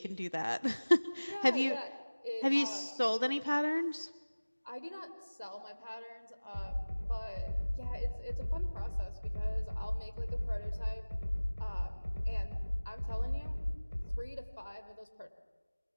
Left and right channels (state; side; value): inverted; both; correlation -1.00